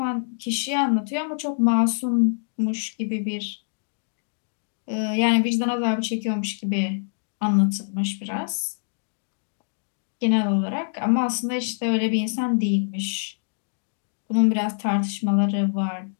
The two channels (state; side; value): silent; right; digital silence